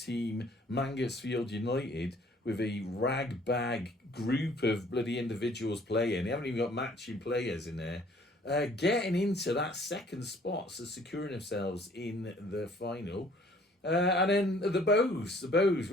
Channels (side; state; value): both; normal; correlation 0.57